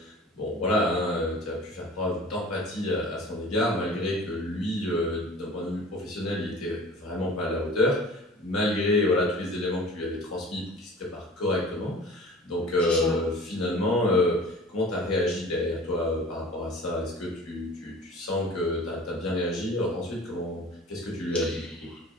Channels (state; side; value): normal; both; correlation 0.43